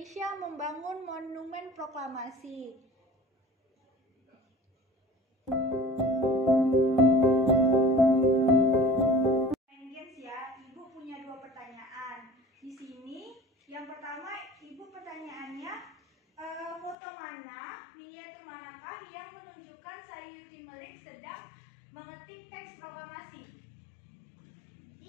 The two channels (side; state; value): right; drops out; at 16.9 s